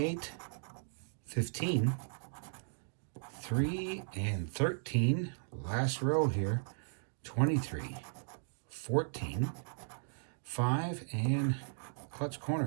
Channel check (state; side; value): silent; left; digital silence